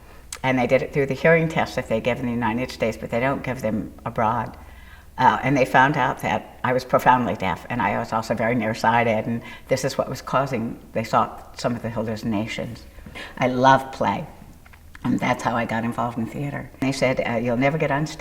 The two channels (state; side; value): identical; both; correlation 1.00